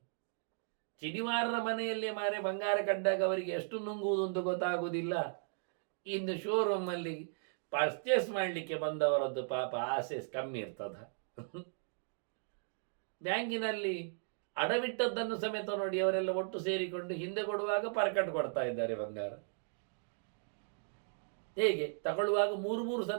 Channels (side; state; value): left; silent; digital silence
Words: ಚಿನಿವಾರರ ಮನೆಯಲ್ಲೇ ಮಾರೆ ಬಂಗಾರ ಕಂಡಾಗ ಅವರಿಗೆ ಎಷ್ಟು ನುಂಗುವುದು ಅಂತ ಗೊತ್ತಾಗುವುದಿಲ್ಲ. ಇನ್ನು ಶೋರೂಮಲ್ಲಿ ಪರ್ಚೇಸ್ ಮಾಡಲಿಕ್ಕೆ ಬಂದವರದ್ದು ಪಾಪ ಆಸೆ ಕಮ್ಮಿ ಇರ್ತದ. ಬ್ಯಾಂಕಿನಲ್ಲಿ ಅಡವಿಟ್ಟದ್ದನ್ನು ಸಮೇತ ನೋಡಿ ಅವರೆಲ್ಲ ಒಟ್ಟು ಸೇರಿಕೊಂಡು ಹಿಂದೆ ಕೊಡುವಾಗ ಪರ್ಕಟ್ ಕೊಡ್ತಾ ಇದ್ದಾರೆ ಬಂಗಾರ. ಹೇಗೆ ತಗೊಳ್ಳುವಾಗ ಮೂರು